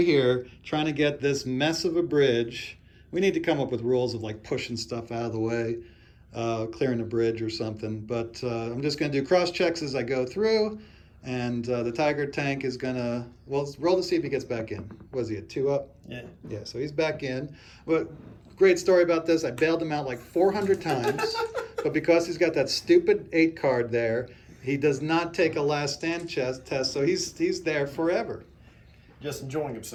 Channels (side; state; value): both; identical; correlation 1.00